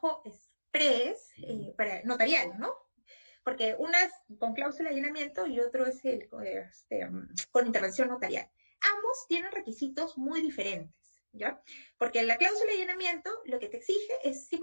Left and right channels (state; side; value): inverted; both; correlation -1.00